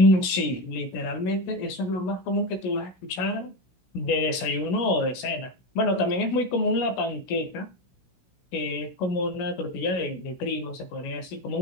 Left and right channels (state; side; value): late; right; 16 ms